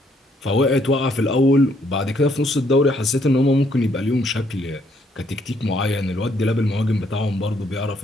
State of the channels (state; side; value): normal; both; correlation 0.69